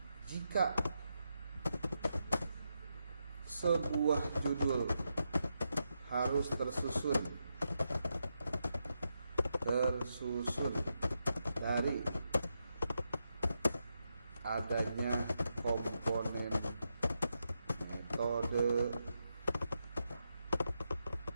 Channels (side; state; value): both; inverted; correlation -0.85